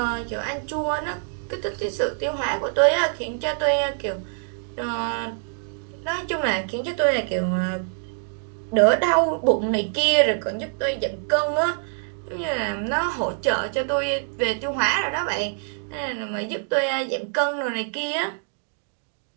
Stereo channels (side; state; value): left; silent; digital silence